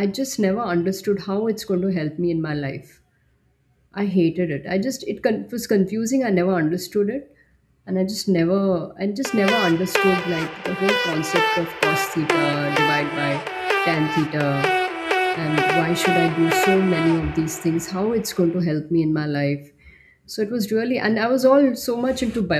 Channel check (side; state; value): both; identical; correlation 1.00